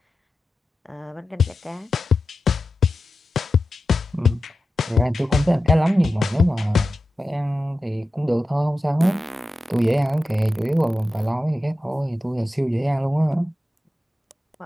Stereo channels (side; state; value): both; normal; correlation 0.93